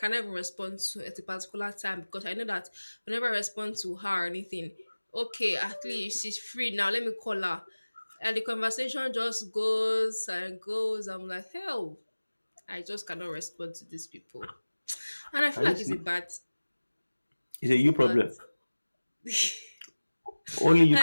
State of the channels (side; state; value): both; inverted; correlation -1.00